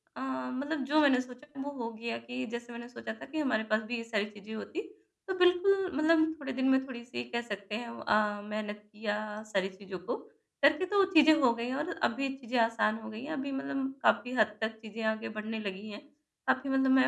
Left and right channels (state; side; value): identical; both; correlation 1.00